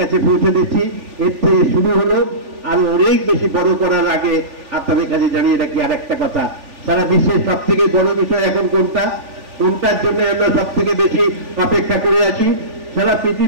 পৌঁছে দিচ্ছি। এর থেকে শুরু হলো, আর অনেক বেশি বড় করার আগে আপনাদের কাছে জানিয়ে রাখি আর একটা কথা, সারা বিশ্বের সব থেকে বড় বিষয় এখন কোনটার জন্য আমরা সব থেকে বেশি অপেক্ষা করে আছি। সারা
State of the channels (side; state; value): left; late; 3.4 ms